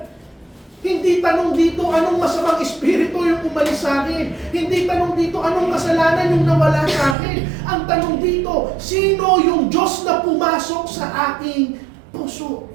Hindi tanong dito anong masamang espiritu yung umalis sa akin. Hindi tanong dito anong kasalanan yung nawala sa akin. Ang tanong dito, sino yung Diyos na pumasok sa aking puso?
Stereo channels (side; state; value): left; drops out; at 7.2 s